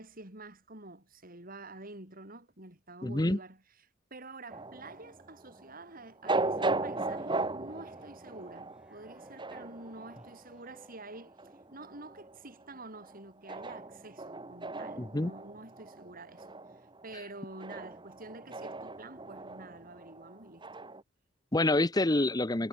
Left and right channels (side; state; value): both; normal; correlation 0.51